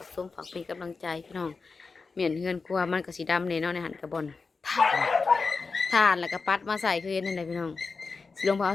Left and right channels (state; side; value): quieter; right; 4.5 dB